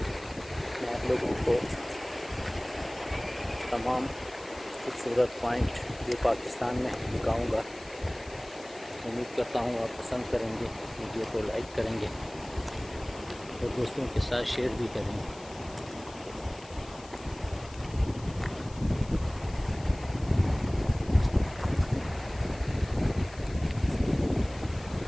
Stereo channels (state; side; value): noise; left; hiss, 20 dB below the sound